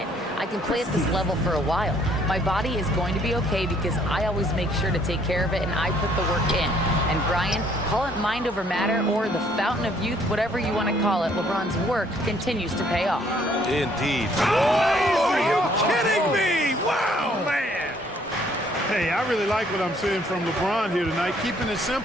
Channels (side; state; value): both; normal; correlation 0.63